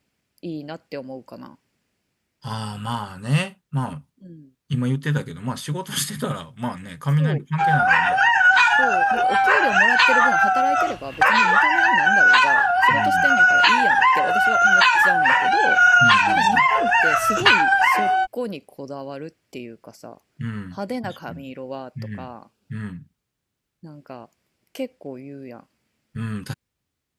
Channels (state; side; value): identical; both; correlation 1.00